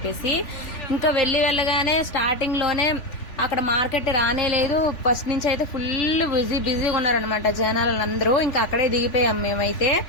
ఇంకా వెళ్ళగానే స్టార్టింగ్ లోనే అక్కడ మార్కెట్ రానే లేదు. ఫస్ట్ నుంచి అయితే ఫుల్ బిజీగా ఉన్నారనమాట జనాలందరూ. ఇంకా అక్కడే దిగిపోయాం మేమైతే.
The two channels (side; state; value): right; late; 3.5 ms